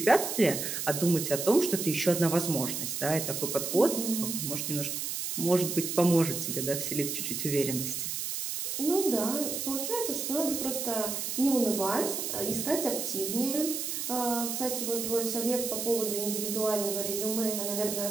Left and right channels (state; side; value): noise; right; hiss, 3 dB below the sound